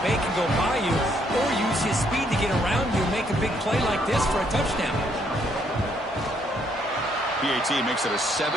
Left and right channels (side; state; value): both; normal; correlation 0.70